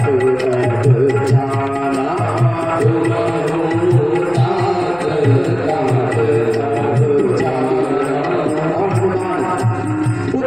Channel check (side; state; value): right; noise; rumble, 24 dB below the sound